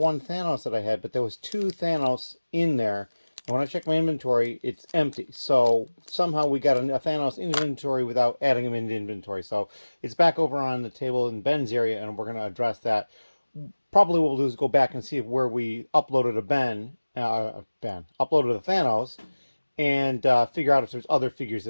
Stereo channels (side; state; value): both; inverted; correlation -1.00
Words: Thanos that I had, but there was two Thanos in there. And when I check my inventory, it's empty. So somehow we got a Thanos in inventory without adding him into inventory. So it's back over on the table in Ben's area, and we're going to address that. Probably what we'll do is go back and see where we uploaded a uploaded a Thanos, and figure out if there's other figures